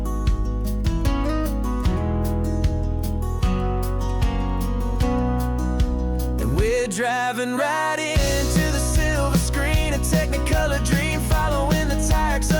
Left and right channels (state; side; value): identical; both; correlation 1.00